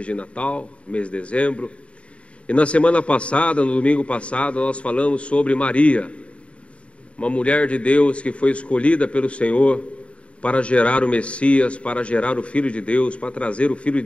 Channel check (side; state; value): right; late; 0.061 ms